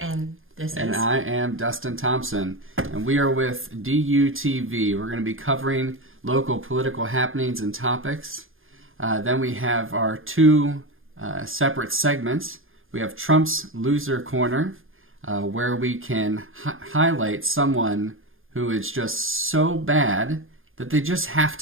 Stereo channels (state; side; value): late; left; 0.59 ms